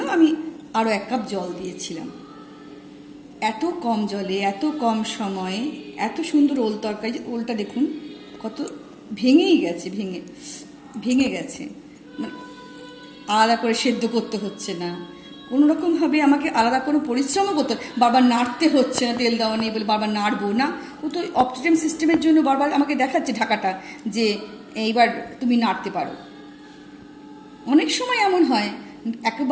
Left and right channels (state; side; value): identical; both; correlation 1.00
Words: আমি আরও 1 কাপ জল দিয়েছিলাম। এত কম জলে এত কম সময়ে এত সুন্দর ওল তরকারি। ওলটা দেখুন কত ভেঙে গেছে, মানে আলাদা করে সেদ্ধ করতে হচ্ছে না, কোনো রকমভাবে আমাকে আলাদা কোনো পরিশ্রমও করতে, বারবার নাড়তে হচ্ছে না, তেল দেওয়া নেই বলে বারবার নাড়বো না। ও তো অপটিমাম সিস্টেমের জন্য বারবার আমাকে দেখাচ্ছে ঢাকাটা যে এইবার তুমি নাড়তে পারো। অনেক সময় এমন হয়